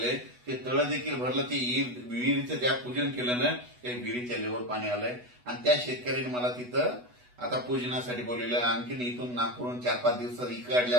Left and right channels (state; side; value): late; left; 8.1 ms